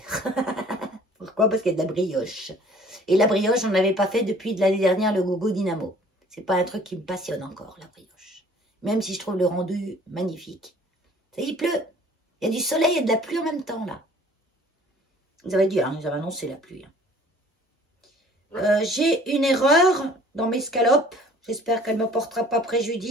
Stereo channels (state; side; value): normal; both; correlation 0.53